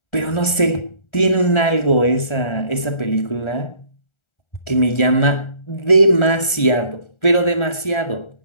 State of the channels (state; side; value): late; right; 1.4 ms